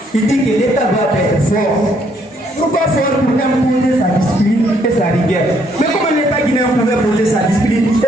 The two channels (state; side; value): normal; both; correlation 0.69